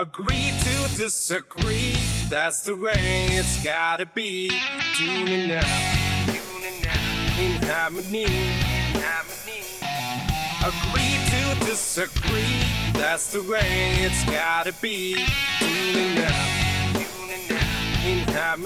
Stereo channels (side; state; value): both; identical; correlation 1.00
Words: to disagree, that's the way it's gotta be. Tuning out in harmony. Agree to disagree, that's the way it's gotta be. Tuning out in